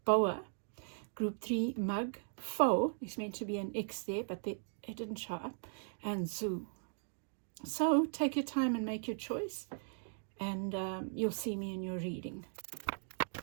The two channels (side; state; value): left; silent; digital silence